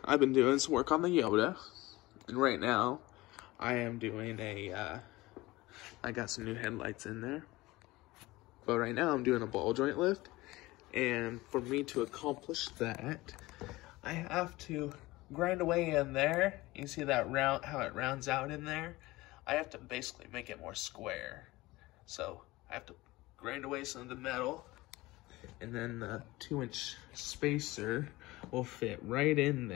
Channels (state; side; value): quieter; right; 19.8 dB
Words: I've been doing some work on the Yoda, and right now, I am doing I got some new headlights in there, but right now I'm doing a ball joint lift, and for me to accomplish that, I have to grind away in there. You see that round, how it rounds out in there? I have to basically make it more square. So, I have to grind away some of the metal, and then the 2-inch spacer will fit right in